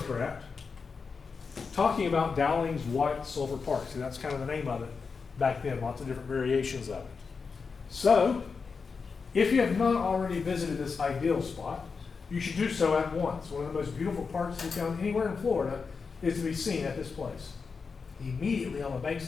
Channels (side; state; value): right; quieter; 5.1 dB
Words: talking about Dowling's White Silver Park. See, that's kind of the name of it back then, lots of different variations of it. So, if you have not already visited this ideal spot, you should do so at once. One of the most beautiful parks to be found anywhere in Florida is to be seen at this place. Immediately on the banks